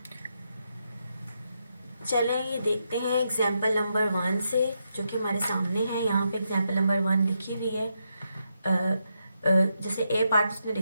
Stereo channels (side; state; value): both; inverted; correlation -0.82